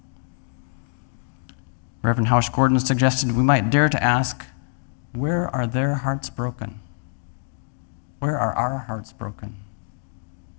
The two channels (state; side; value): silent; right; digital silence